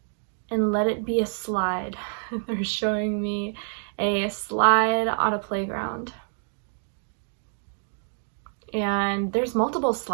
And let it be a slide. They're showing me a slide on a playground. And there's multiple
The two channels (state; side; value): silent; left; 56 dB below the other